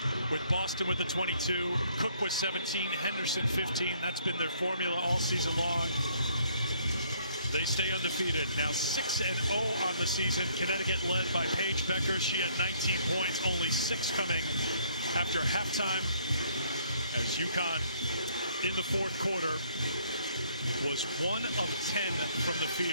with Boston with the 22, Cook with 17, Henderson 15. That's been their formula all season long. They stay undefeated, now 6-0 on the season. Connecticut led by Paige Becker. She had 19 points, only 6 coming after halftime, as UConn in the fourth quarter was 1 of 10 from the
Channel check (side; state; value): both; inverted; correlation -0.64